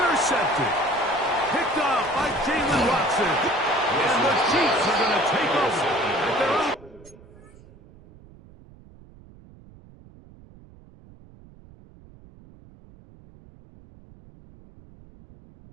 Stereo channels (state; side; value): noise; right; rumble, 23 dB below the sound